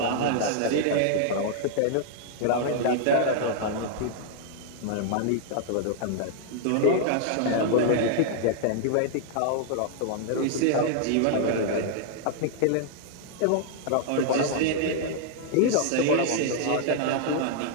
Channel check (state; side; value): different; both; correlation -0.01